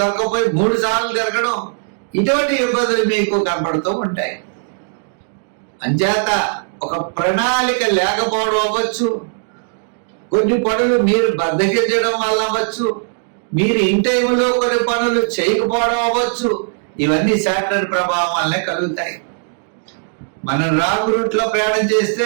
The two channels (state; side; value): silent; left; digital silence